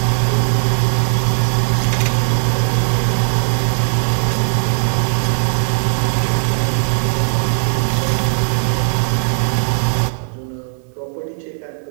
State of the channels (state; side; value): silent; left; digital silence